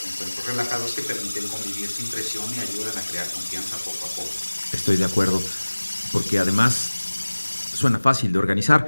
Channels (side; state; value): both; inverted; correlation -1.00